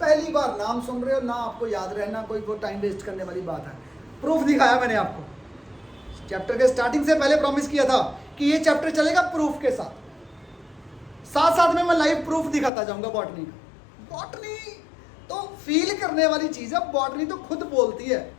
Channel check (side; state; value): right; drops out; at 12.7 s